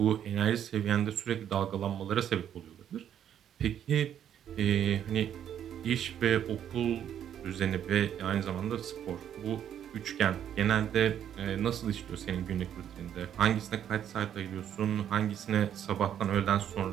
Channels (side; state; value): left; quieter; 9.8 dB